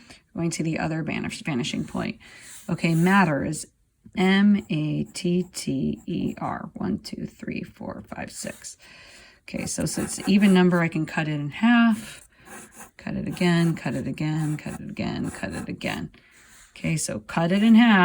going to the other vanishing point. Okay, matter is M-A-T-T-E-R. 1, 2, 3, 4, 5, 6. Okay, so it's an even number, I can cut it in half, cut it again, cut it again, cut it again, cut it again. Okay, so cut it in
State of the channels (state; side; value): identical; both; correlation 1.00